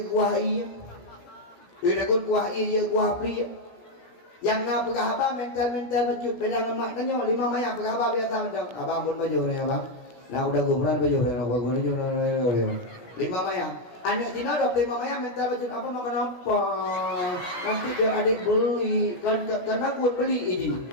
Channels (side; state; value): right; late; 17 ms